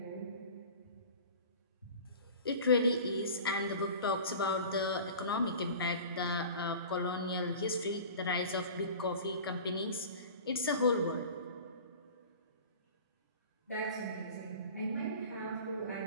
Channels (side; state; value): both; inverted; correlation -0.39